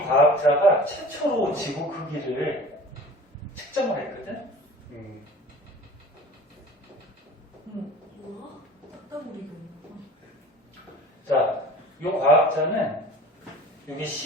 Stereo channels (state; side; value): normal; both; correlation 0.41